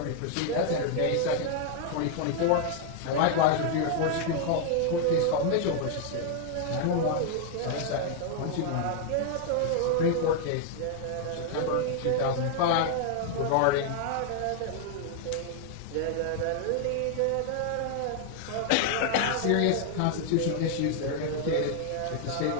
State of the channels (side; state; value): both; different; correlation 0.00